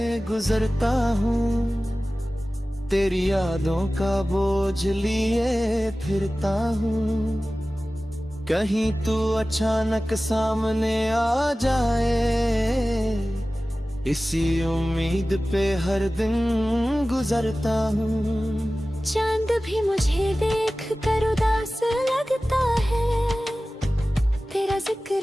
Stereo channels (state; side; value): normal; both; correlation 0.96